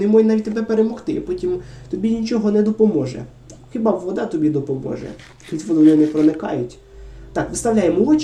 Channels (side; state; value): both; identical; correlation 1.00